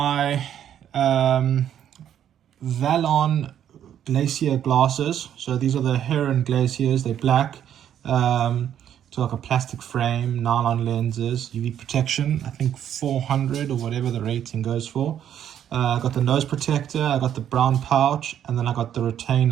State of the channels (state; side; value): quieter; left; 10.0 dB